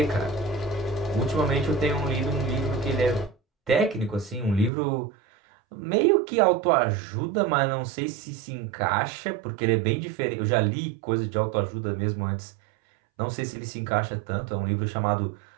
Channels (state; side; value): drops out; left; at 4.7 s